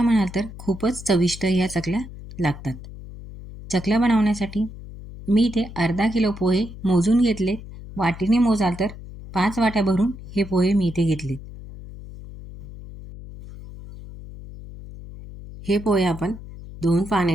म्हणाल तर खूपच चविष्ट या चकल्या लागतात. चकल्या बनवण्यासाठी मी इथे अर्धा किलो पोहे मोजून घेतले. वाटीने मोजाल तर 5 वाट्या भरून हे पोहे मी इथे घेतले. हे पोहे आपण 2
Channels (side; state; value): left; noise; hum, 14 dB below the sound